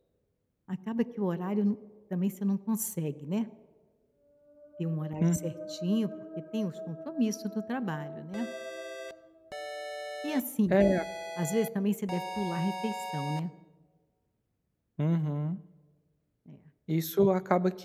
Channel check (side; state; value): both; identical; correlation 1.00